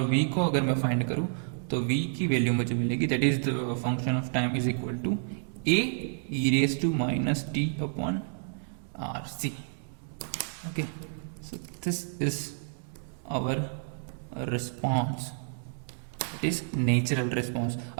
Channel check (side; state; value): left; silent; digital silence